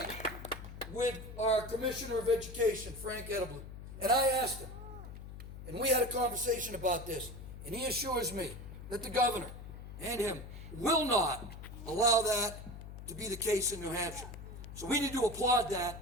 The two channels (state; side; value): noise; left; hum, 12 dB below the sound